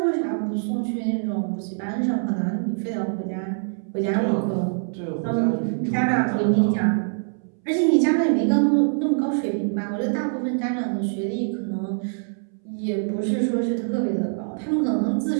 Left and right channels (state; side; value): silent; left; 63 dB below the other